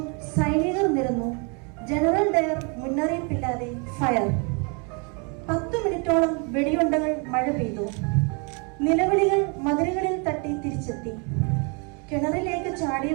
സൈനികർ നിരന്നു. General Dyer മുന്നറിയിപ്പില്ലാതെ fire. 10 മിനിറ്റോളം വെടിയുണ്ടകൾ മഴ പെയ്തു. നിലവിളികൾ മതിലുകളിൽ തട്ടി തിരിച്ചെത്തി. കിണറിലേക്ക്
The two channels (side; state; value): left; quieter; 34.6 dB